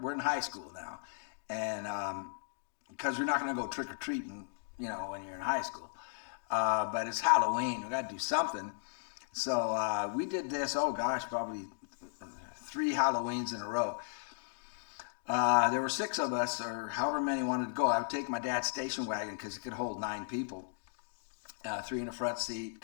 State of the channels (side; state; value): right; silent; digital silence